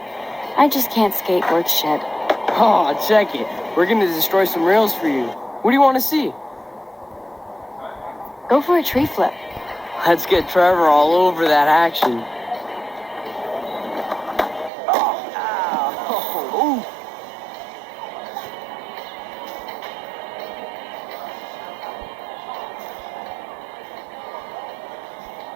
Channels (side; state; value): left; drops out; at 14.7 s